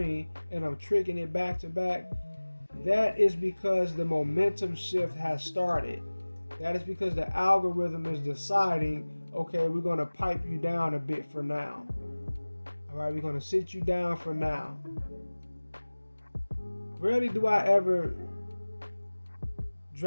and I'm tricking it back to back. That is because the momentum shift has started. That is because the algorithm is deciding, okay, we're going to pipe you down a bit for now. All right, we're going to sit you down for now. Rarely do I ever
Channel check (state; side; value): inverted; both; correlation -1.00